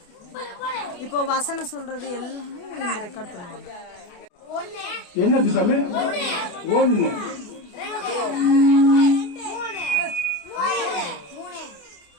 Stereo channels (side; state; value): right; late; 28 ms